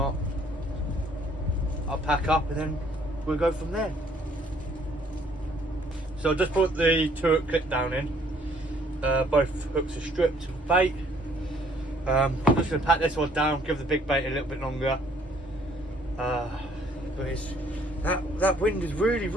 I'll pack up and then we'll go from there. So I just put the turret clip down in. Both hooks are stripped of bait. I'm just going to pack this one down, give the big bait a little bit longer. But it's that wind has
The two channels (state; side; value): normal; both; correlation 0.62